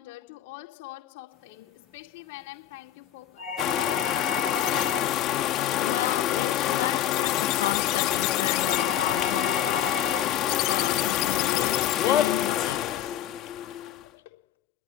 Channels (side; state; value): right; quieter; 11.3 dB